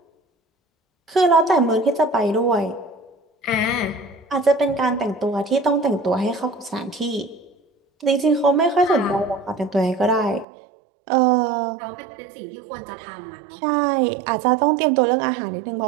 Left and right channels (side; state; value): left; drops out; at 10.5 s